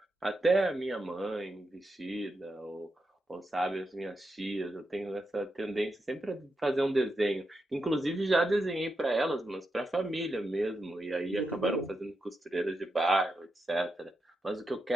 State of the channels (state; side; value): normal; both; correlation 0.86